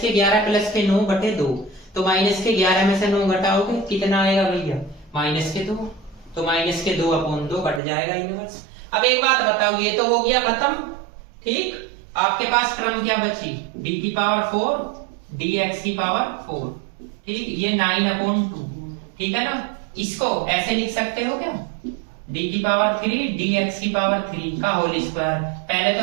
के 11 प्लस के 9/2, तो माइनस के 11 में से 9 घटाओगे कितना आएगा भैया, -2, तो -2/2 कट जाएगा इनवर्स। अब एक बात बताओ, ये तो हो गया खत्म, ठीक। आपके पास टर्म क्या बची, डी की पावर 4 डी एक्स की पावर 4, ठीक, ये 9/2, ठीक है ना। इसको ऐसे लिख सकते हो क्या, डी की पावर 3 डी एक्स की पावर 3 का होल स्क्वायर। पहले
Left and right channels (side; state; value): left; drops out; at 7.8 s